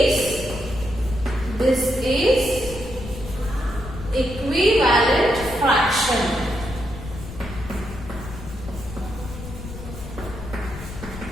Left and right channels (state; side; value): noise; left; rumble, 11 dB below the sound